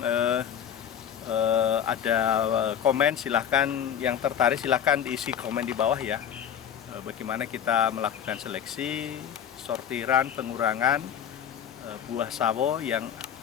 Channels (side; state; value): right; quieter; 8.9 dB